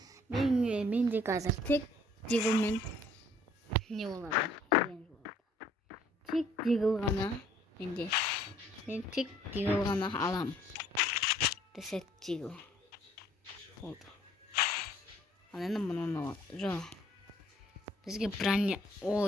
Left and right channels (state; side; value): normal; both; correlation 0.60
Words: Менде қазір тек дегілмен не болады деген болады. Тек дегіл ғана менде. Мен тек дегіл ғана алам. Десет дегіл. Болды. Ал енді мұны жоқ. Бізге броня.